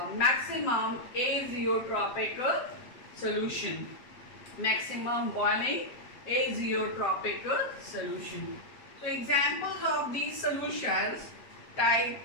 maximum azeotropic solution. Maximum boiling azeotropic solution. So examples of these solutions: type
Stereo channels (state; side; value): late; right; 7.8 ms